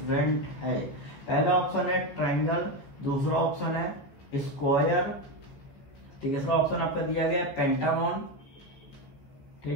है। पहला ऑप्शन है ट्रायंगल, दूसरा ऑप्शन है स्क्वायर, तीसरा ऑप्शन आपका दिया गया है पेंटागन,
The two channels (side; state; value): right; late; 15 ms